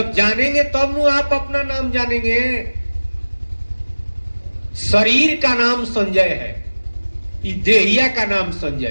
जानेंगे तब नु आप अपना नाम जानेंगे। शरीर का नाम संजय है, इस देहिया का नाम संजय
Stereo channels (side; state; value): both; inverted; correlation -1.00